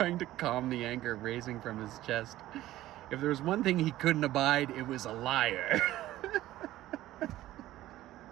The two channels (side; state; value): left; quieter; 15.1 dB